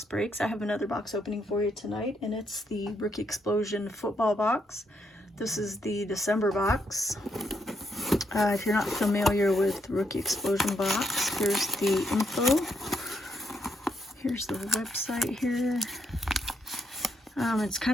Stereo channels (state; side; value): normal; both; correlation 0.76